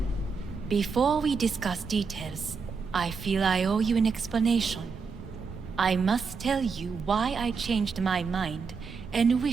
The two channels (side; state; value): left; quieter; 5.2 dB